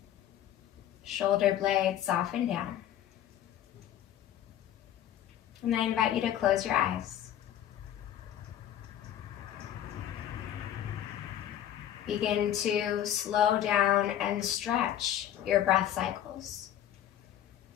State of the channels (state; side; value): quieter; right; 11.2 dB